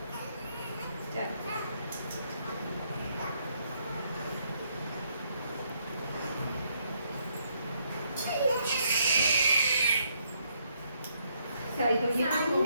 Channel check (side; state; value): both; inverted; correlation -0.72